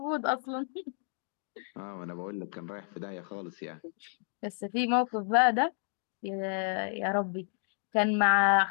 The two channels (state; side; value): silent; right; 57 dB below the other